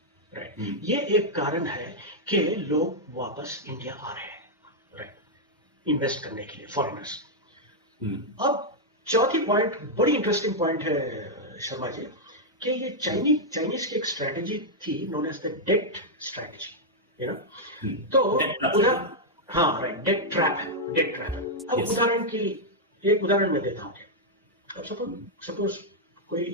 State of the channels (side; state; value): both; normal; correlation -0.04